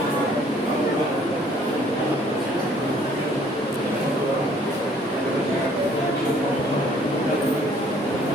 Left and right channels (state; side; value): normal; both; correlation 0.59